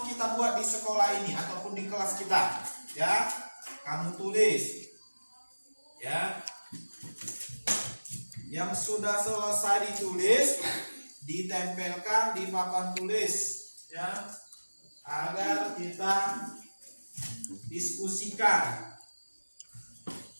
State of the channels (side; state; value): both; inverted; correlation -1.00